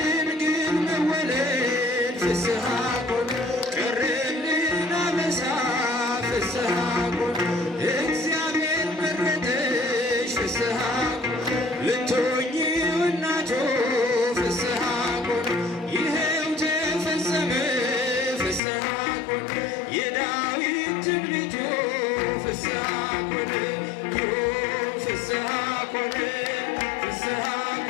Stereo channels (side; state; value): right; drops out; at 18.6 s